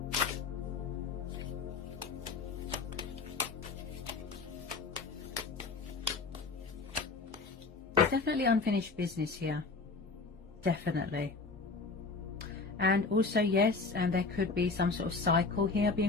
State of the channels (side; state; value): right; quieter; 4.1 dB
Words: There's definitely unfinished business here. Definitely. And also, yes, and there could be some sort of cycle here